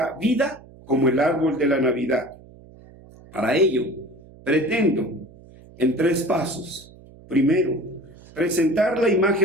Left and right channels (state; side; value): noise; right; hum, 22 dB below the sound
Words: vida como el árbol de la Navidad. Para ello, pretendo en 3 pasos. Primero, presentar la